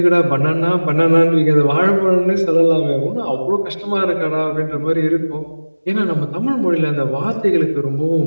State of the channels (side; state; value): both; inverted; correlation -1.00